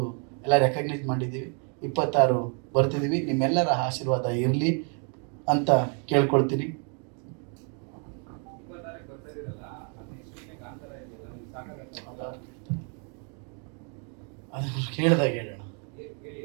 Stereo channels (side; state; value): left; quieter; 39.8 dB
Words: ಎಲ್ಲ ರೆಕಗ್ನೈಸ್ ಮಾಡಿದ್ದೀವಿ. 26 ಬರ್ತಿದ್ದೀವಿ. ನಿಮ್ಮೆಲ್ಲರ ಆಶೀರ್ವಾದ ಇರಲಿ ಅಂತ ಕೇಳ್ಕೊಳ್ತೀನಿ. ಅದು ಕೇಳಿದಾಗ ಹೇಳೋಣ.